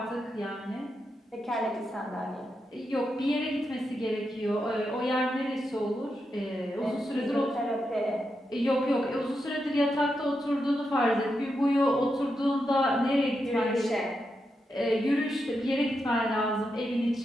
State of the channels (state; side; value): normal; both; correlation 0.85